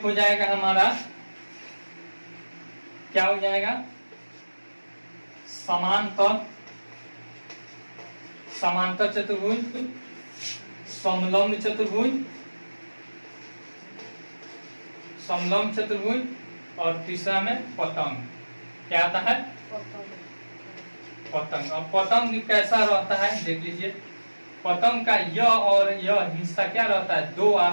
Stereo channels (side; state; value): both; inverted; correlation -1.00